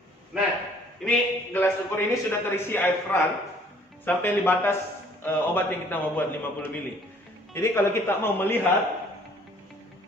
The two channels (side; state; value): both; normal; correlation 0.58